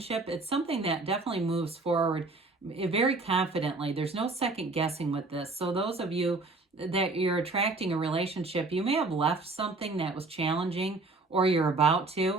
it's something that definitely moves forward very confidently. There's no second guessing with this. So those of you that you're attracting a relationship. You may have left something that was challenging, or you're about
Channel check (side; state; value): left; quieter; 3.5 dB